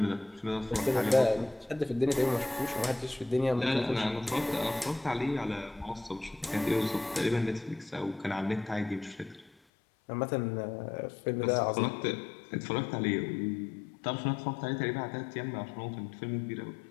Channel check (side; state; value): right; drops out; at 9.5 s